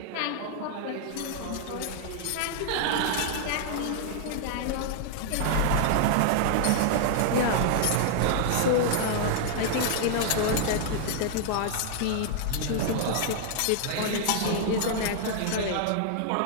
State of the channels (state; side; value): different; both; correlation -0.01